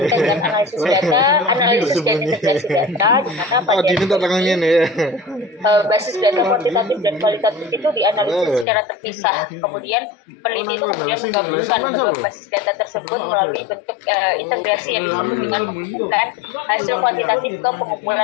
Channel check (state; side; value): drops out; right; at 8.7 s